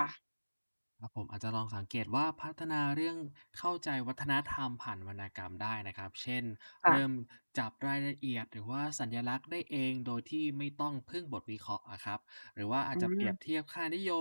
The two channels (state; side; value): inverted; both; correlation -1.00